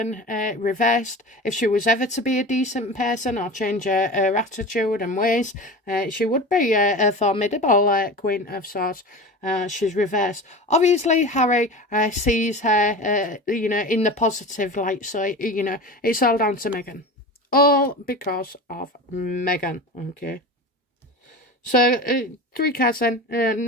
reversed. If she was ever to be a decent person or change her attitude and ways, she would be a formidable Queen of Swords. She's reversed. Obviously, Harry sees her, you know, in the positive light. So, you know, it's all down to Meghan. All because of Meghan, okay? So, 3 cards then.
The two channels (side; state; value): both; normal; correlation 0.31